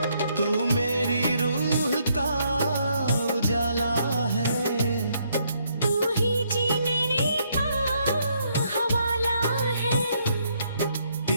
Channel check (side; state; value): both; inverted; correlation -0.72